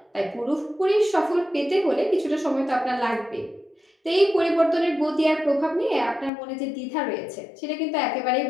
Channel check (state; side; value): drops out; right; at 6.3 s